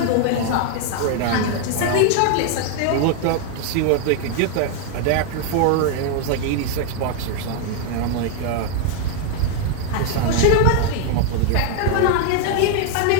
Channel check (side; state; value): both; different; correlation 0.00